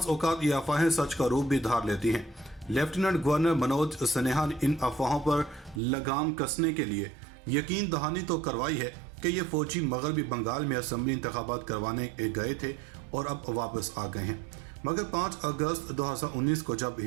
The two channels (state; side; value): drops out; left; at 5.8 s